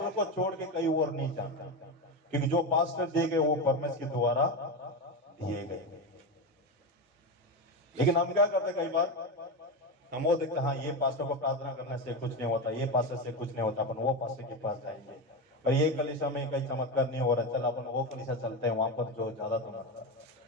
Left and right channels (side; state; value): both; normal; correlation 0.16